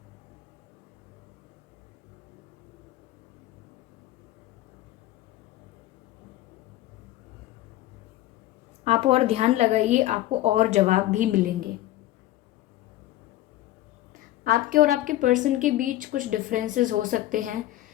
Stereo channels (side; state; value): right; quieter; 15.2 dB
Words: आप और ध्यान लगाइए, आपको और जवाब भी मिलेंगे। आपके और आपके पर्सन के बीच कुछ डिफरेंसेस हो सकते हैं,